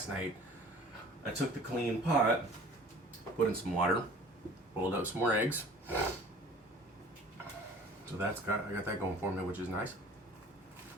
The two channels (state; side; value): normal; both; correlation 0.47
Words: night, I took the clean pot, put in some water, boiled up some more eggs. So I got that going for me, which is nice.